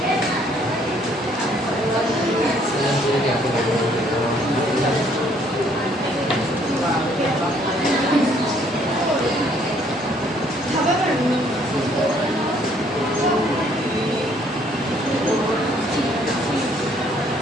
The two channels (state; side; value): normal; both; correlation 0.64